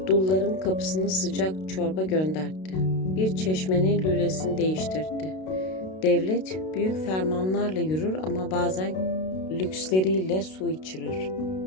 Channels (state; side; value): late; right; 32 ms